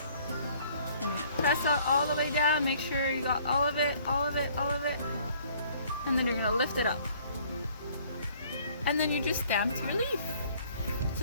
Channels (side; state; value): both; inverted; correlation -0.58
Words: And you press it all the way down, make sure you got all of it, all of it, all of it. And then you're going to lift it up. And then you just stamped your leaf. So